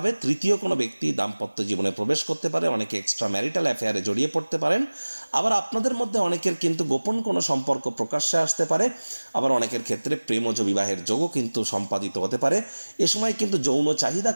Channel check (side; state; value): both; inverted; correlation -1.00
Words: তৃতীয় কোনো ব্যক্তি দাম্পত্য জীবনে প্রবেশ করতে পারে, অনেকে এক্সট্রা ম্যারিটাল অ্যাফেয়ারে জড়িয়ে পড়তে পারেন। আবার আপনাদের মধ্যে অনেকের কিন্তু গোপন কোনো সম্পর্ক প্রকাশ্যে আসতে পারে। আবার অনেকের ক্ষেত্রে প্রেমজ বিবাহের যোগও কিন্তু সম্পাদিত হতে পারে। এ সময় কিন্তু যৌন চাহিদা,